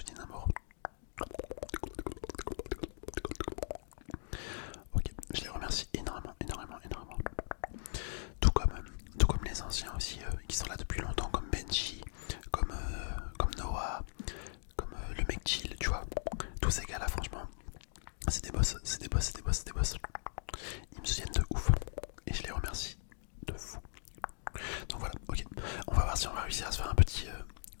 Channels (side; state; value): right; silent; digital silence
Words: Ok, je les remercie énormément. Tout comme les anciens aussi qui sont là depuis longtemps, comme Benji, comme Noah, comme le mec chill, tu vois. Tous ces gars là, franchement, c'est des boss. Ils me soutiennent de ouf et je les remercie de fou. Donc voilà, ok. On va voir si on va réussir à se faire un petit